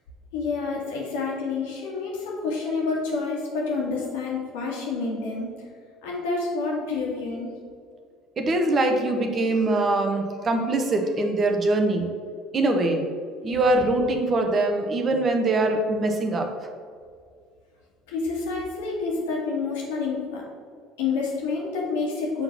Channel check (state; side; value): normal; both; correlation 0.54